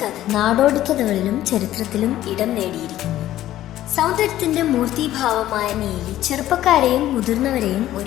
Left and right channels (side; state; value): right; quieter; 13.6 dB